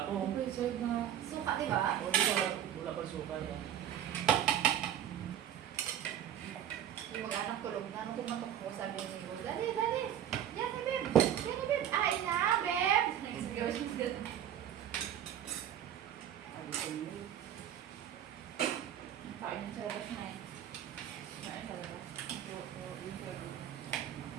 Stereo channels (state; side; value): quieter; left; 10.3 dB